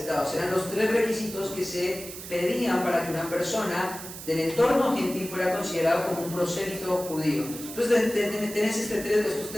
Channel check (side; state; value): right; noise; hiss, 11 dB below the sound